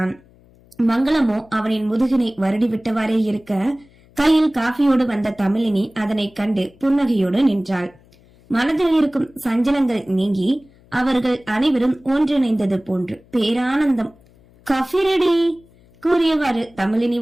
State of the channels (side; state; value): left; noise; hum, 29 dB below the sound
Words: மங்களமோ அவனின் முதுகினை வருடி விட்டவாறே இருக்க, கையில் காஃபியோடு வந்த தமிழினி அதனை கண்டு புன்னகையோடு நின்றாள். மனதில் இருக்கும் சஞ்சலங்கள் நீங்கி அவர்கள் அனைவரும் ஒன்றிணைந்தது போன்று பேரானந்தம். காஃபி ரெடி கூறியவாறு தமிழினி